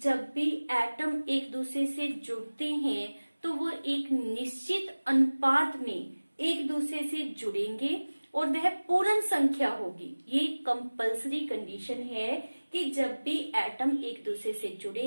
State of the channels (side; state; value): both; inverted; correlation -1.00